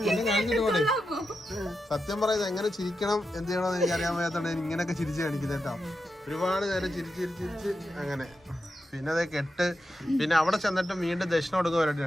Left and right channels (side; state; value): both; normal; correlation 0.88